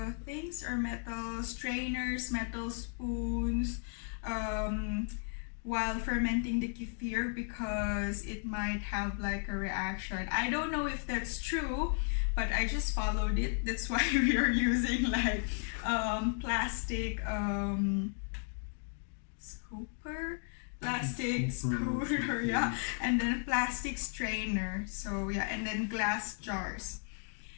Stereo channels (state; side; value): silent; right; 55 dB below the other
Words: things, or metal strainers, metal spoons, while fermenting the kefir, because it might have like a reaction. I don't know if that's true, but I just followed it. That's why we are using like plastic scooper, plastic scooter, yeah, and then plastic strainer. So yeah, and then glass jars.